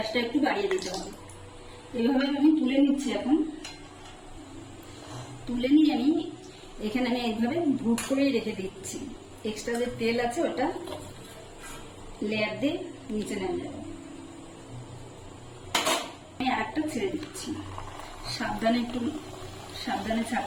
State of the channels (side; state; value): both; identical; correlation 1.00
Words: একটু বাড়িয়ে দিতে হবে। এইভাবে আমি তুলে নিচ্ছি। এখন তুলে নিয়ে আমি এখানে এইভাবে ভুট করেই রেখে দিচ্ছি। এক্সট্রা যে তেল আছে ওটা লেয়ার দিয়ে নিচে নেমে যাবে। আমি আরেকটা ছেড়ে দিচ্ছি। সাবধানে, একটু সাবধানে